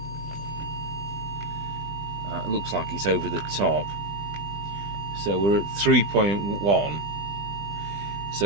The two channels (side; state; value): left; late; 20 ms